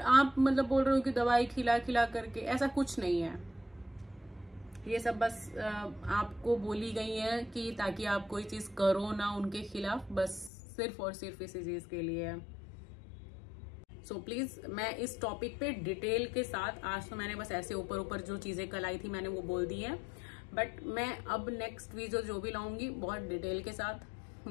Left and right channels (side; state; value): right; drops out; at 10.5 s